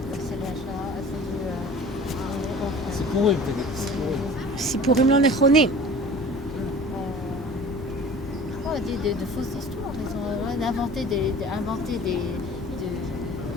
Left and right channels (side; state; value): both; normal; correlation 0.43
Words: סיפורים לא נכונים. De fausses histoires, ils ont inventé